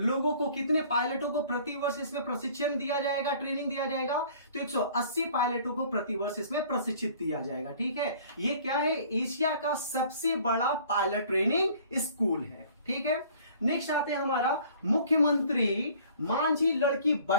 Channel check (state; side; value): inverted; both; correlation -0.53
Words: को, कितने पायलटों को प्रतिवर्ष इसमें प्रशिक्षण दिया जाएगा, ट्रेनिंग दिया जाएगा? तो 180 पायलटों को प्रतिवर्ष इसमें प्रशिक्षित दिया जाएगा। ठीक है। ये क्या है? एशिया का सबसे बड़ा पायलट ट्रेनिंग स्कूल है। ठीक है। नेक्स्ट आते हैं हमारा मुख्यमंत्री मांझी लड़की